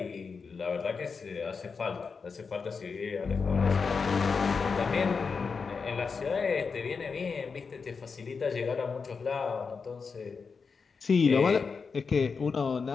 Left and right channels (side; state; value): right; quieter; 5.2 dB